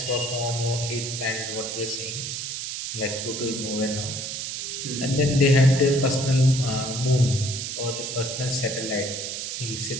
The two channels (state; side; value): noise; right; hiss, 5 dB below the sound